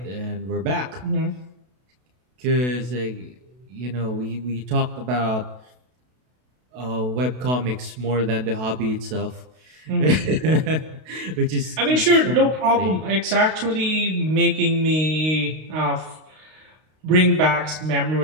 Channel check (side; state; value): left; late; 32 ms